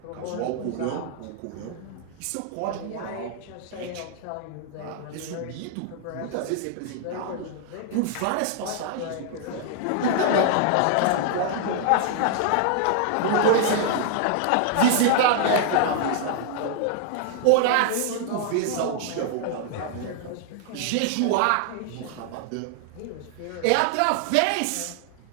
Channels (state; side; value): different; both; correlation 0.00